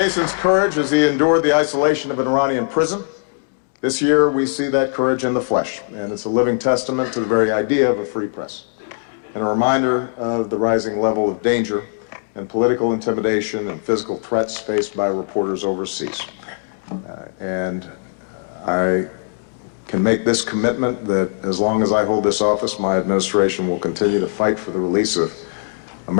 courage as he endured the isolation of an Iranian prison. This year we see that courage in the flesh, and it's a living testament to the very idea of a free press, and a reminder of the rising level of danger and political intimidation and physical threats faced by reporters overseas. And I can make this commitment that as long as I hold this office, my administration will continue to fight for the release of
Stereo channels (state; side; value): silent; right; digital silence